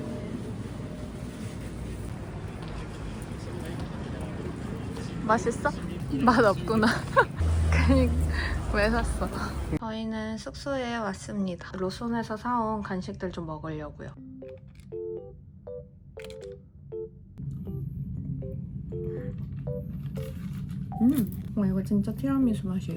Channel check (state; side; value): identical; both; correlation 1.00